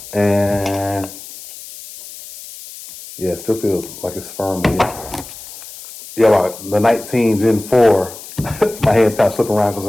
and yeah, it still feels like it's firm again. Yeah, like the 19 Gen 4, my hand's kind of slipping around because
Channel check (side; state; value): left; noise; hiss, 15 dB below the sound